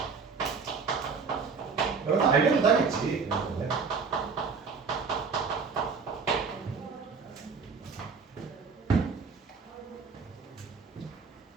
여러분 알려도 하겠지.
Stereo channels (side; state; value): left; quieter; 5.2 dB